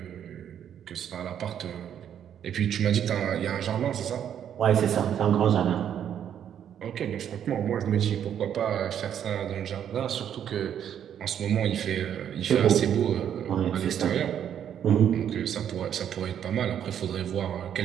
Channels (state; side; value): quieter; left; 9.4 dB